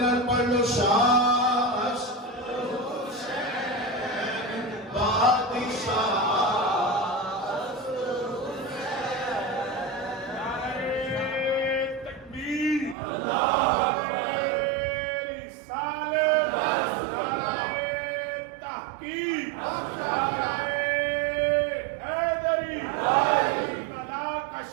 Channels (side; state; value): left; drops out; at 13.0 s